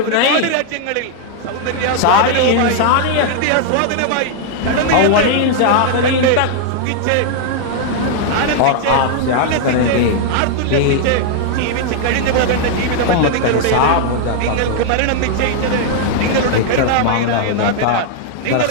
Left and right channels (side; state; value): both; different; correlation 0.00